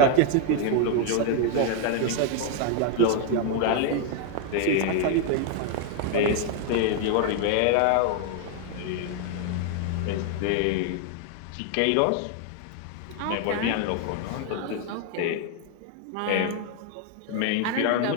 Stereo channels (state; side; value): different; both; correlation 0.00